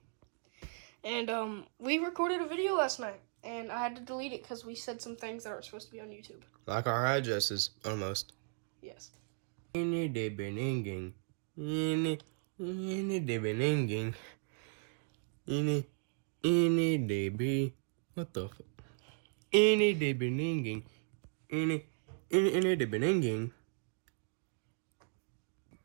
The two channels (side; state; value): left; silent; 54 dB below the other